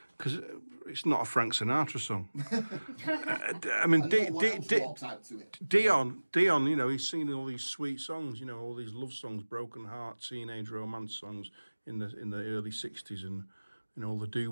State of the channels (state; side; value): inverted; both; correlation -1.00